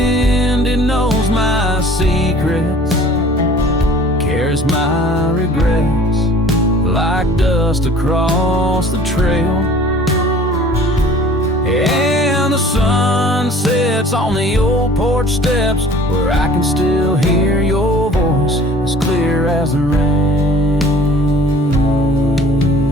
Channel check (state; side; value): normal; both; correlation 0.49